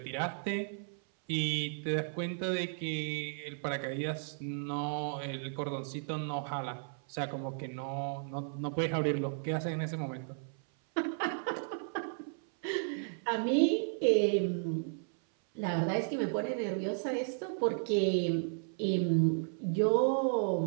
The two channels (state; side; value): silent; left; 55 dB below the other